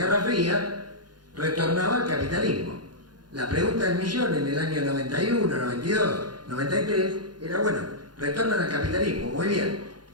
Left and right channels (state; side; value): late; left; 0.70 ms